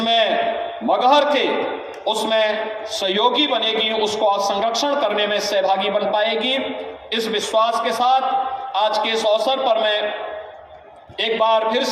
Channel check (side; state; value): both; identical; correlation 1.00